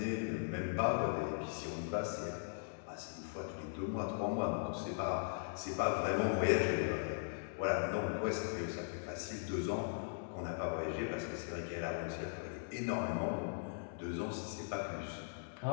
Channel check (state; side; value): silent; right; digital silence